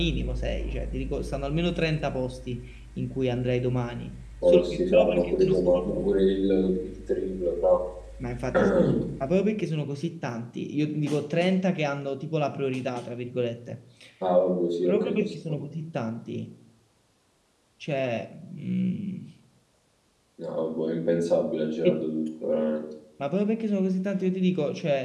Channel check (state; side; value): identical; both; correlation 1.00